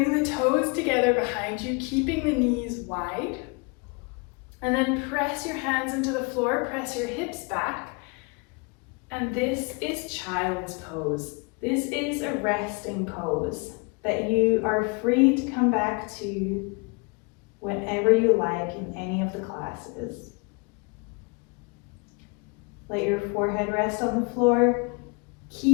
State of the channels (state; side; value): quieter; right; 31.1 dB